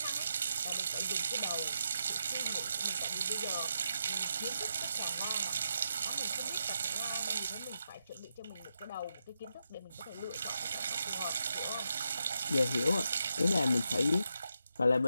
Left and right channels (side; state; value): both; inverted; correlation -0.84